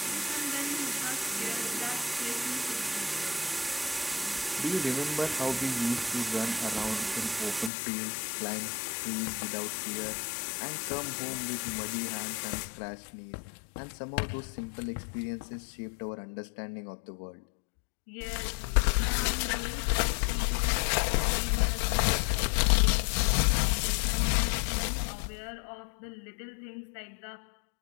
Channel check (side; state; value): right; drops out; at 7.7 s